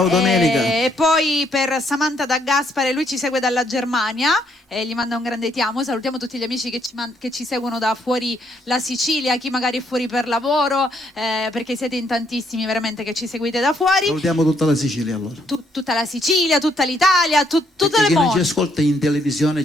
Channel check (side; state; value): both; normal; correlation 0.71